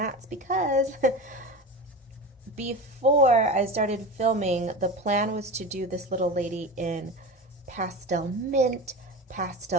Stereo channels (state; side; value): normal; both; correlation 0.27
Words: because before I started filming, the plan was to do this little lady in pastel mint,